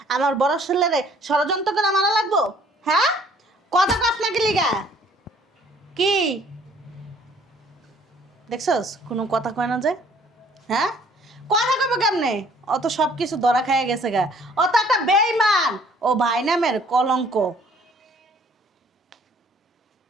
আমার বড় ছেলেরে ষড়যন্ত্র করে মারা লাগবো? হ্যাঁ, কত গাছ না লিগা কি দেখছস? কোনো কথা কয় না যে? হ্যাঁ, কথা কবে কেমনে? অত সব কিছু ধরা খাইয়া গেছে গা। ও তো একটা বেঈমান, ও ভাই নামের কলঙ্ক।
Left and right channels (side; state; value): both; normal; correlation 0.58